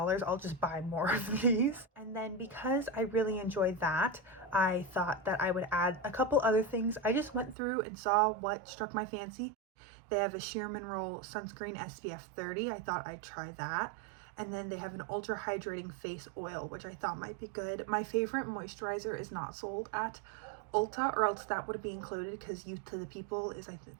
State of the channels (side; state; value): left; drops out; at 7.6 s